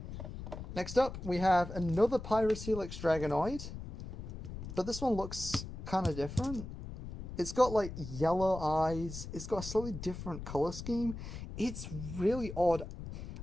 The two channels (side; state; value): left; noise; rumble, 9 dB below the sound